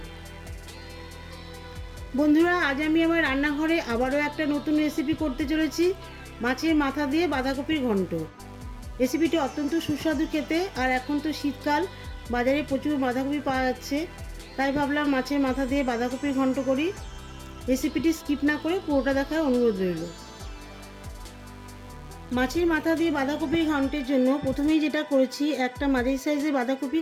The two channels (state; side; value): identical; both; correlation 1.00